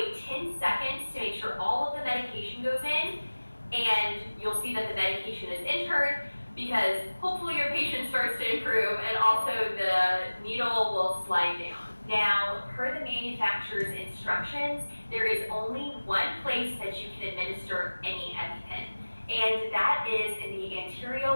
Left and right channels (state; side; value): inverted; both; correlation -1.00